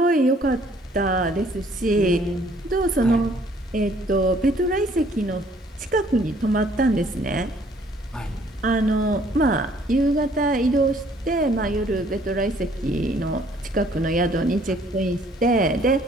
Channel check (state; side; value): normal; both; correlation 0.61